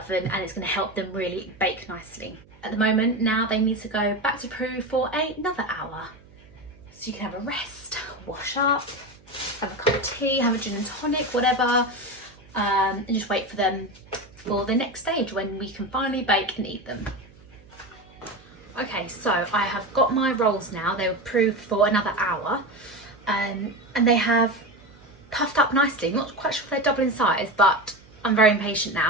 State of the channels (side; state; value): right; noise; hum, 27 dB below the sound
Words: and it's going to help them really bake nicely. At the moment now they need to go back to proof for another hour. So you can have a rest, wash up, have a cup of tea, have a gin and tonic, whatever. And just wait for them for the next stage when we can finally bake and eat them. Okay, so I have got my rolls now. They were proofed for another hour, and they have puffed up nicely. I'm not quite sure if they're double in size, but I'm very impatient